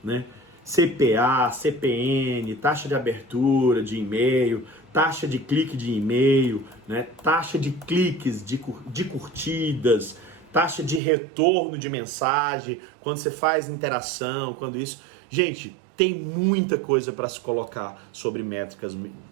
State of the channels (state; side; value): drops out; left; at 11.0 s